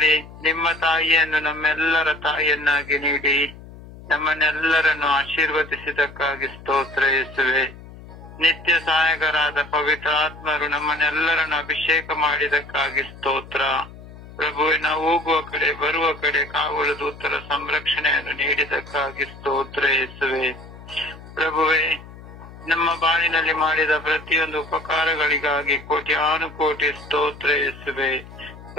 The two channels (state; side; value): noise; left; hum, 17 dB below the sound